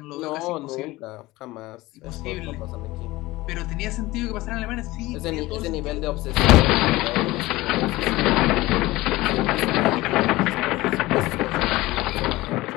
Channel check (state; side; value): quieter; right; 19.3 dB